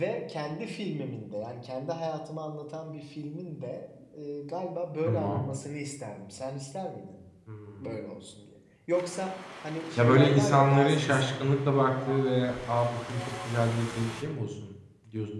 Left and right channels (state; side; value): identical; both; correlation 1.00